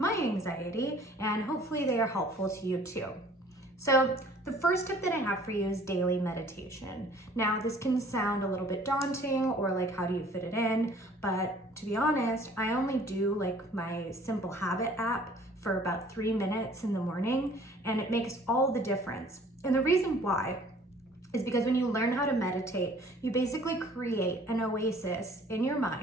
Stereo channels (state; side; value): normal; both; correlation 0.53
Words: anxiety, and hopefully they are helpful to you too. So the first tip that I have for you is daily meditation. Now this can sound a little bit daunting or like how do you fit it in, but to be honest, I only do like my Simple Habit app for about 3 minutes in the morning, and it makes all the difference. And the reason why is because when you learn how to meditate, you basically create an oasis in your